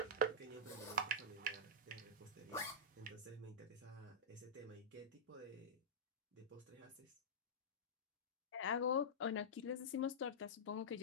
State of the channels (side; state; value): both; normal; correlation -0.13